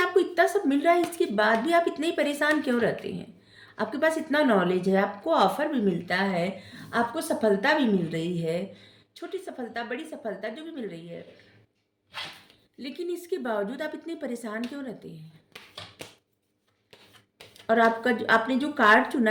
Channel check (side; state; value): both; identical; correlation 1.00